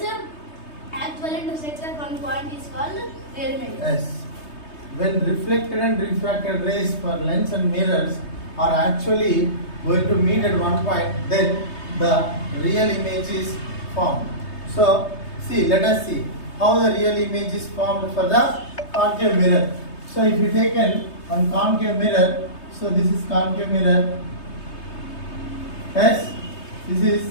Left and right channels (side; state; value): right; late; 3.3 ms